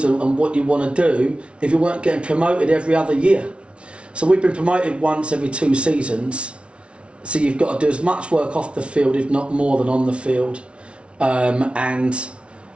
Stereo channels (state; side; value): late; left; 0.059 ms